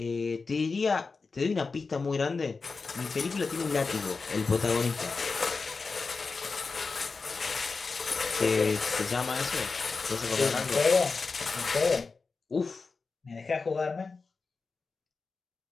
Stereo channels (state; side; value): quieter; right; 4.4 dB